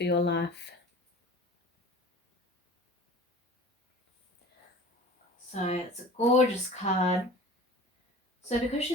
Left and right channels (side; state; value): both; normal; correlation 0.41